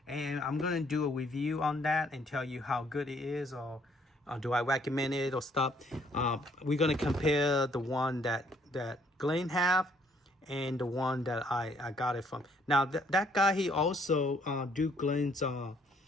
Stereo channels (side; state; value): both; normal; correlation 0.65